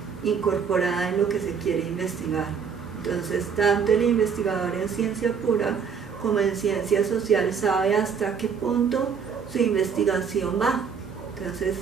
incorporada en lo que se quiere investigar. Entonces, tanto el investigador en ciencia pura como en ciencia social sabe hasta qué punto su investigación va. Entonces,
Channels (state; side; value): quieter; left; 6.4 dB